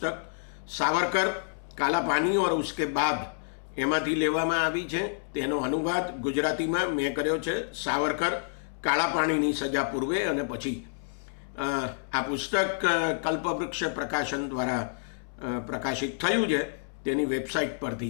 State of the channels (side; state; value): right; silent; 59 dB below the other